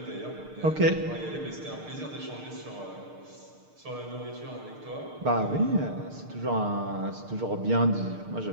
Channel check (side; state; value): left; late; 6.6 ms